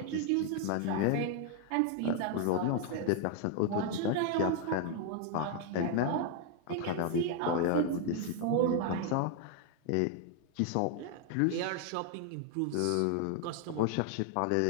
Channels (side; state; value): both; different; correlation 0.01